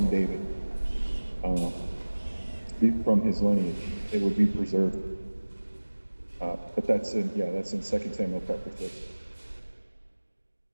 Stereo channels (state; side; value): inverted; both; correlation -1.00